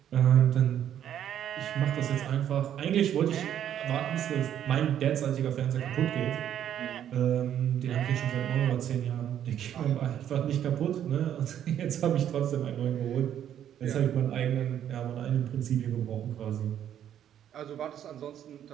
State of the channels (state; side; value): quieter; left; 10.2 dB